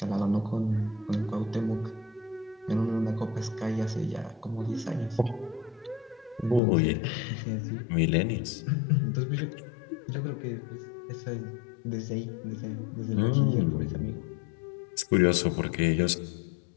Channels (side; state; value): right; drops out; at 6.6 s